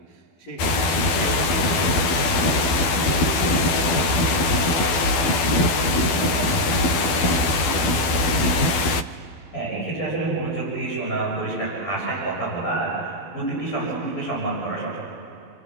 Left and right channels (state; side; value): late; right; 12 ms